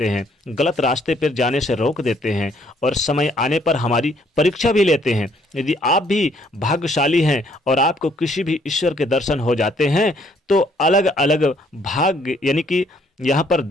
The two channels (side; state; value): both; normal; correlation 0.65